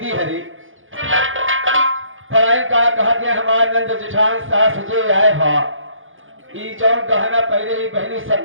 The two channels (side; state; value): left; late; 0.58 ms